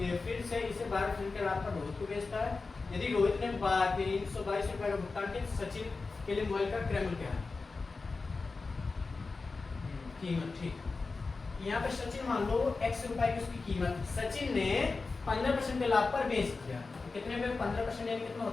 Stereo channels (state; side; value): quieter; right; 4.0 dB